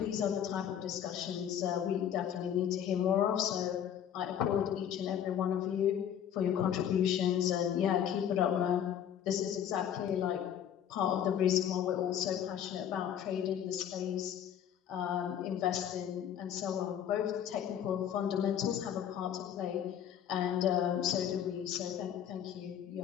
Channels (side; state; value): right; quieter; 9.4 dB